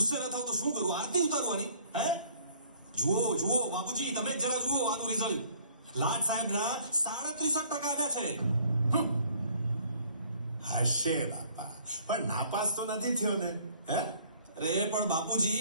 ન થાવ તો શું કરું? આરતી ઉતારવાની? હે, જુઓ જુઓ બાપુજી, તમે જ જરા જુઓ આનું રિઝલ્ટ. લાડ સાહેબના 37% આવ્યા છે. હશે બાપા, પણ નાપાસ તો નથી થયો ને? હે, અરે પણ બાપુજી,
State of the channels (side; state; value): both; inverted; correlation -0.58